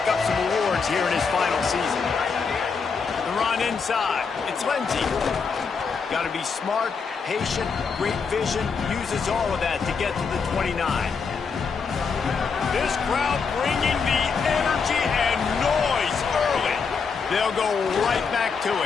up some awards here in his final season. The run inside. It's Lindsey. Got to be smart, patient, great vision, uses all of that to get to the 29. This crowd bringing the energy and noise early. They'll go right back to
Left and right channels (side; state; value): right; quieter; 5.5 dB